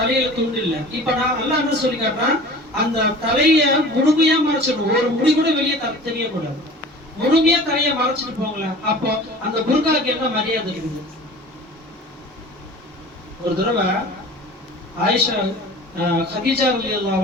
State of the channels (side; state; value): both; normal; correlation 0.41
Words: துண்டு இல்ல. இப்ப நான் அல்லாஹ் என்ன சொல்லி காட்டுறான், அந்த தலைய முழுமையா மறைச்சிடணும், ஒரு முடி கூட வெளியே தெரியக்கூடாது. முழுமையா தலைய மறைச்சிட்டு போங்களேன். அப்போ அந்த புர்காக்கு என்ன மரியாதை இருக்குது? ஒரு தடவை ஆயிஷா கதீஜா ரலியல்லாஹு